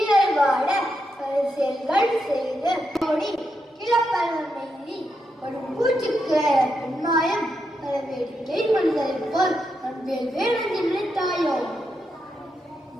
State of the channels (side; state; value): both; normal; correlation 0.83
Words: வாட பரிசெல்கள் செய்து ஓடி கிளப்பலி ஒரு பூச்சிக்கு பெண்மாயம் பல வேடிக்கை மனிதரை போல் அன்பேல் வேணென்று நினைத்தாயோ.